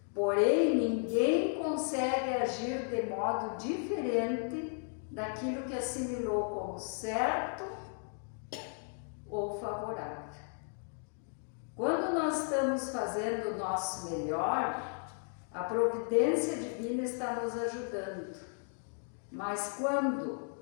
Porém, ninguém consegue agir de modo diferente daquilo que assimilou como certo ou favorável. Quando nós estamos fazendo o nosso melhor, a providência divina está nos ajudando. Mas quando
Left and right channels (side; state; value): right; silent; 55 dB below the other